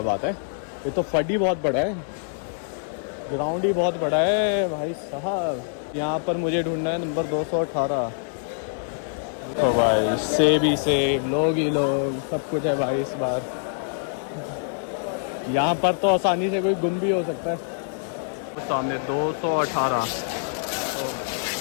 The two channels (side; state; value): right; silent; digital silence